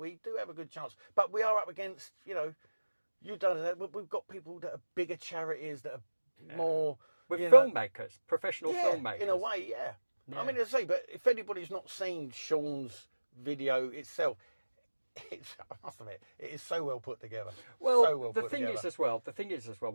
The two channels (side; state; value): both; inverted; correlation -1.00